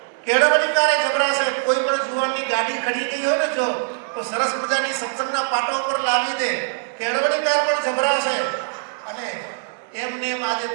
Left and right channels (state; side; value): silent; left; 63 dB below the other